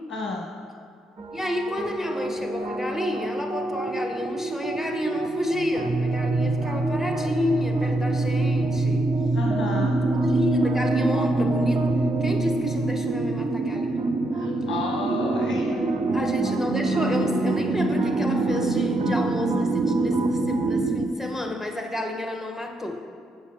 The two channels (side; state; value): both; normal; correlation 0.79